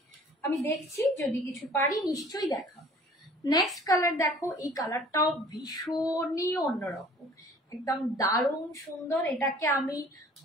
আমি দেখছি যদি কিছু পারি নিশ্চয়ই দেখাবো। নেক্সট কালার দেখো, এই কালারটাও ভীষণই অন্যরকম, একদম দারুণ সুন্দর। এটাকে আমি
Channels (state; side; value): normal; both; correlation 0.51